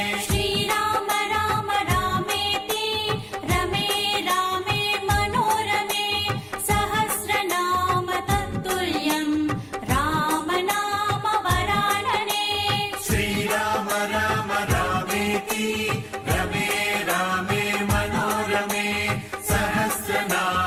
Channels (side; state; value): both; identical; correlation 1.00